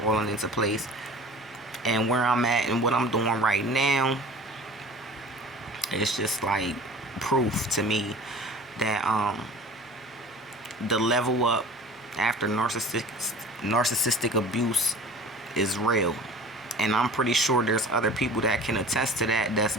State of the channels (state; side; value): normal; both; correlation 0.42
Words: into place. And where I'm at and what I'm doing right now, it's just like proof to me that the level up after narcissistic abuse is real. And I'm pretty sure there's other people that can attest to that, that's